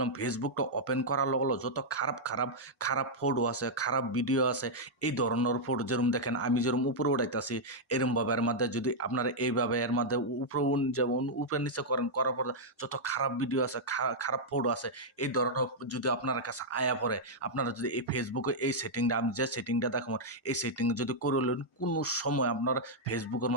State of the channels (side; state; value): both; normal; correlation -0.05